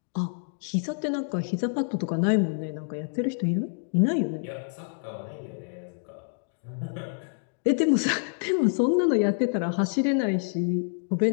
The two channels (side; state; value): right; silent; 58 dB below the other